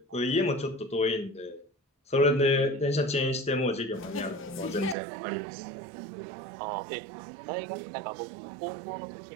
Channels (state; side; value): drops out; left; at 5.0 s